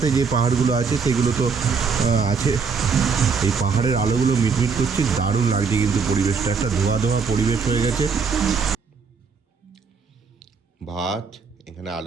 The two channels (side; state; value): left; quieter; 5.4 dB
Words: যে পাহাড়গুলো আছে সেগুলো তো আছে। এই পাহাড়ের আলোগুলো মিটমিট করছে, দারুণ লাগছে কিন্তু পরিবেশটা, একটা ধোয়া ধোয়া পরিবেশ হয়ে গেছে। ভাত, এখানে